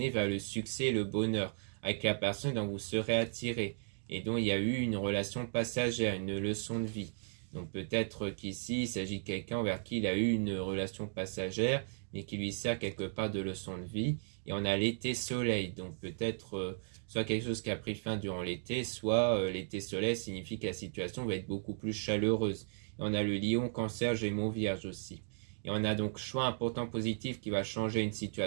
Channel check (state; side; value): silent; left; digital silence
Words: vers le succès et le bonheur avec la personne dont vous serez attiré et dont il y a eu une relation passagère, une leçon de vie. Donc peut-être qu'ici, il s'agit de quelqu'un vers qui il a eu une relation passagère, mais qui lui sert quelque part de leçon de vie. Et on a l'été soleil, donc peut-être soit quelque chose qui a pris fin durant l'été, soit l'été soleil signifie que la situation va être beaucoup plus chaleureuse. Et on a le lion, cancer, gémeaux, vierge aussi. Et on a donc choix important positif qui va changer une